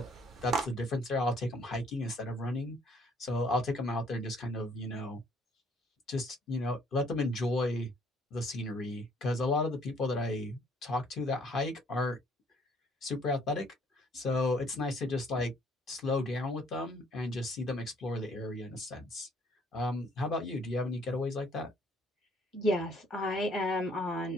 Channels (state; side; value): normal; both; correlation 0.62